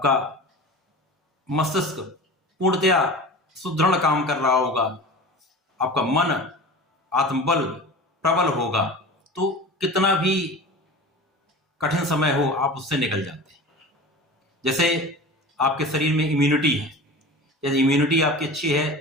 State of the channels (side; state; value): both; normal; correlation 0.35